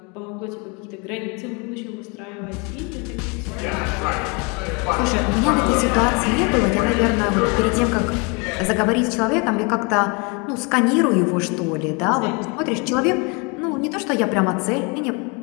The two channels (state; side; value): quieter; right; 31.3 dB